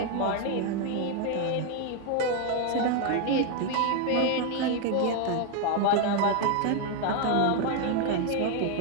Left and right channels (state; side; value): different; both; correlation 0.01